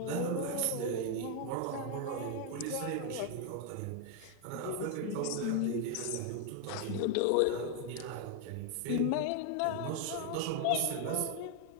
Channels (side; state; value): both; different; correlation 0.01